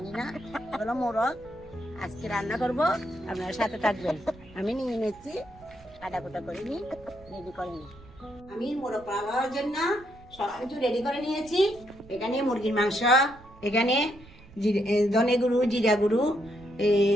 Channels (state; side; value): noise; right; rumble, 23 dB below the sound